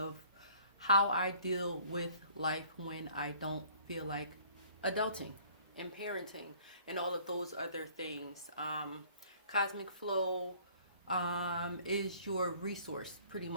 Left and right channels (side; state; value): both; inverted; correlation -0.55